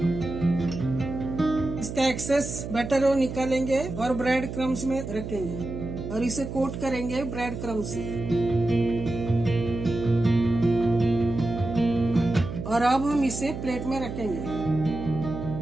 इसका एक्सेस बैटर वो निकालेंगे और ब्रेड क्रम्स में रखेंगे और इसे कोट करेंगे ब्रेड क्रम्स से। और अब हम इसे प्लेट में रखेंगे।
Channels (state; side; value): noise; right; hum, 7 dB below the sound